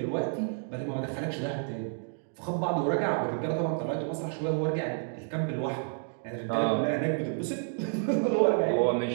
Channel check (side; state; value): left; silent; 58 dB below the other